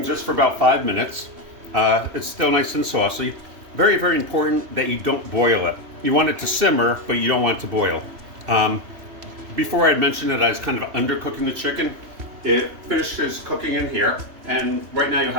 just for about 5 minutes. It's still nice and saucy. Very, very important that you don't boil it. You want it to simmer, but you don't want it to boil. Before I'd mentioned that I was kind of undercooking the chicken. It finishes cooking in here, and right now you'll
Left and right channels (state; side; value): late; left; 2.7 ms